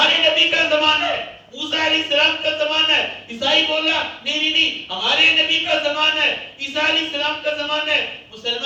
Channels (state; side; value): identical; both; correlation 1.00